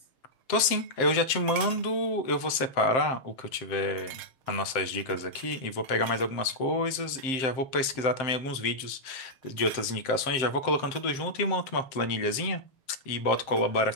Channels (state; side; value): late; right; 7.6 ms